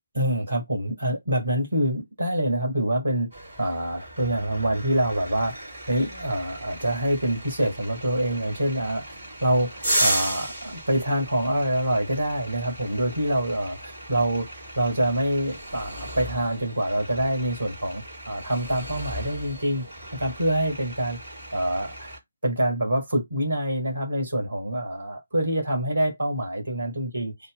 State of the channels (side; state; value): both; inverted; correlation -0.79